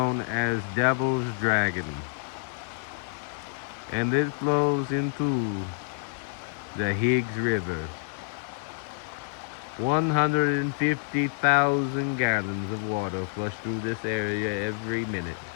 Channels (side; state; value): right; silent; digital silence